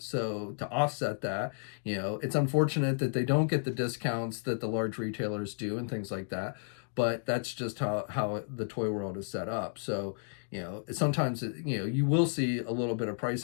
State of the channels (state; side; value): silent; right; digital silence